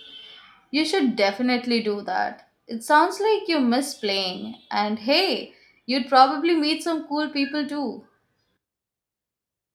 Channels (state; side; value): identical; both; correlation 1.00